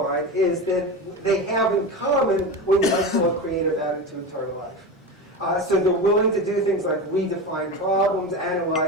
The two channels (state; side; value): normal; both; correlation 0.24